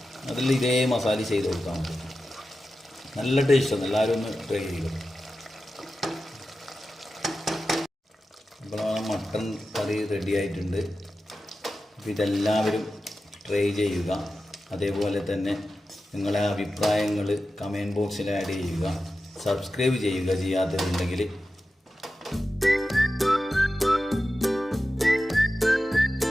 അതിൽ ഇതേ മസാല ചെയ്ത് കൊടുക്കാൻ മതി. നല്ല ടേസ്റ്റാണ്, എല്ലാവരും ഒന്ന് ട്രൈ ചെയ്യും. അപ്പോൾ മട്ടൺ കറി റെഡി ആയിട്ടുണ്ട്. അപ്പോൾ ഇതെല്ലാവരും ട്രൈ ചെയ്യുക. അതേപോലെ തന്നെ നിങ്ങളെ അഭിപ്രായങ്ങൾ കമൻറ്റ് ബോക്സിൽ ആഡ് ചെയ്യുക. സബ്സ്ക്രൈബ് ചെയ്യുക ചെയ്യാത്തവരുണ്ടെങ്കിൽ.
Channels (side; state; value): both; normal; correlation 0.93